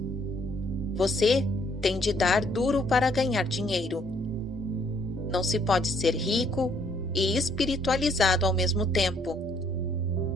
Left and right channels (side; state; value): both; normal; correlation 0.66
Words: Você tem de dar duro para ganhar dinheiro. Não se pode ser rico e espiritualizado ao mesmo tempo.